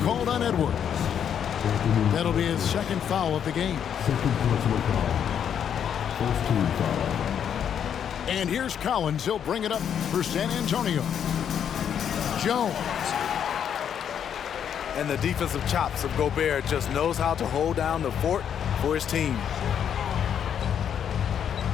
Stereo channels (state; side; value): quieter; right; 8.6 dB